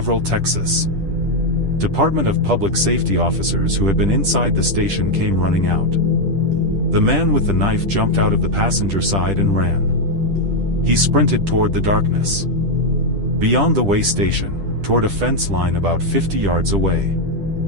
Texas Department of Public Safety officers who had been inside the station came running out. The man with the knife jumped out of the passenger side and ran. He sprinted toward the darkness. Beyond the way station, toward a fence line about 50 yards away.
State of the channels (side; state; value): left; late; 10 ms